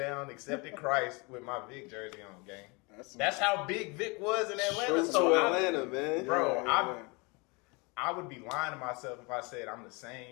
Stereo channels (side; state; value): right; quieter; 28.7 dB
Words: accepted Christ with my Vic jersey on, gang. That's how big Vic was in Atlanta. So Atlanta, man. Bro, I would be lying to myself if I said I'm the